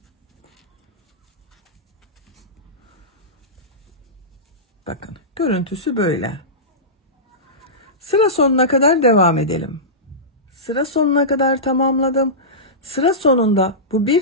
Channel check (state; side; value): normal; both; correlation -0.17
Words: Bakın görüntüsü böyle. Sıra sonuna kadar devam edelim. Sıra sonuna kadar tamamladım. Sıra sonunda bu bir